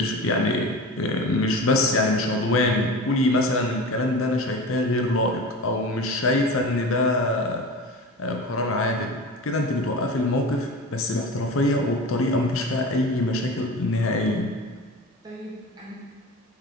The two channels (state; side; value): normal; both; correlation 0.32